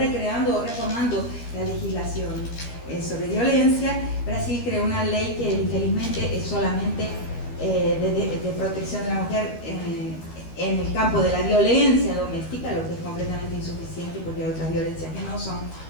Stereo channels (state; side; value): late; right; 13 ms